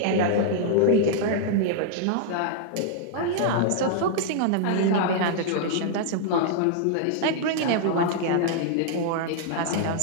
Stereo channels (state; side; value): different; both; correlation -0.01